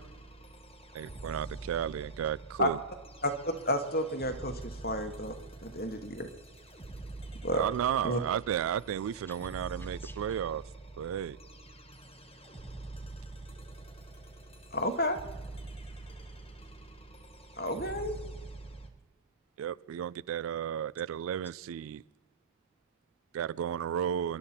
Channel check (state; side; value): quieter; left; 3.7 dB